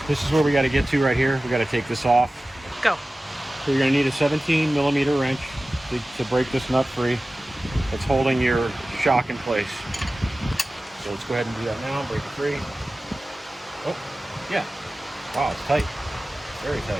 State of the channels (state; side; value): normal; both; correlation 0.96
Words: this is where we got to get to right here. We got to take this off. Go. So you're going to need a 17mm wrench to break this nut free. It's holding your shock in place. So let's go ahead and do that now. Break it free. Oh, yeah. Wow, it's tight. Very